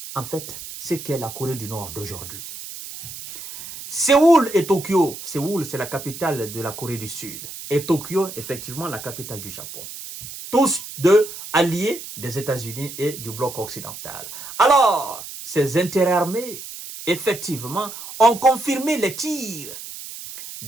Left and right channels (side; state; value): right; noise; hiss, 11 dB below the sound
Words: en fait, ce qu'est la Corée du Nord d'aujourd'hui. Séoul et Tokyo. Séoul, c'est la capitale de la Corée du Sud. Et Tokyo, effectivement, la capitale du Japon. Tous deux alliés des États-Unis et du bloc occidental. Alors, ces intérêts armés, effectivement, ont confirmé les tirs